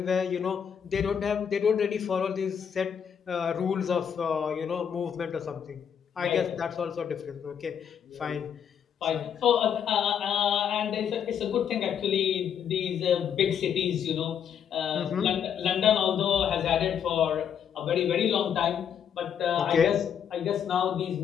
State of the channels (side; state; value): right; quieter; 8.2 dB